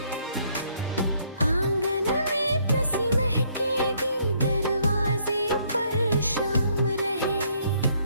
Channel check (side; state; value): both; inverted; correlation -0.67